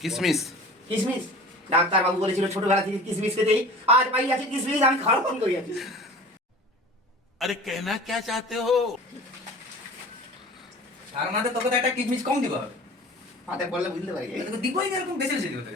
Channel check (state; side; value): normal; both; correlation 0.41